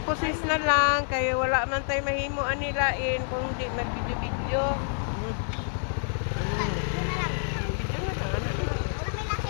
na lang kay wala man tay mahimo anilain kung di mag-video-video. Video na lang. Video na lang, ano na lang. Wala may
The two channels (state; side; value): silent; right; digital silence